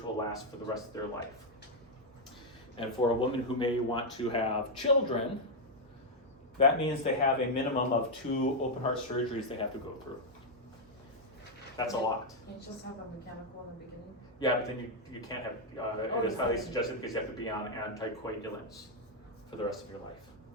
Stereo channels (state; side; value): normal; both; correlation 0.00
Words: will last for the rest of their life. And for a woman who may want to have children, that means they have a minimum of 2 open heart surgeries they have to go through. That's a lot. You just have a mechanical in the beginning? Yeah, but then you can't have, it is highly suggested because you have to be on anticoagulants for the rest of your life.